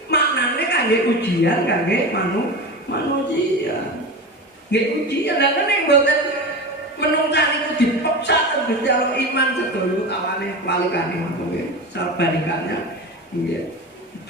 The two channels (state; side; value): normal; both; correlation 0.26